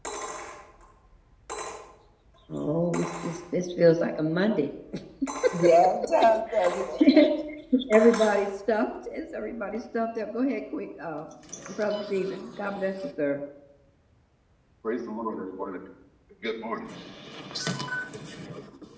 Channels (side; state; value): both; identical; correlation 1.00